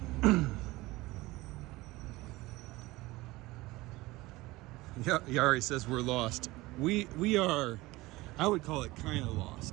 Yari says we're lost. We are, I would call it kind of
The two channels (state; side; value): quieter; left; 20.1 dB